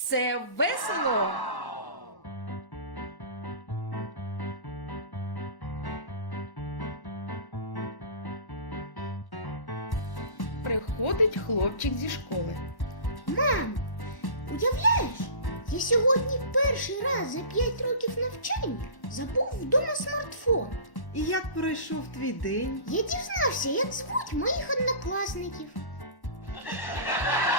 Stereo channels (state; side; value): late; right; 1.1 ms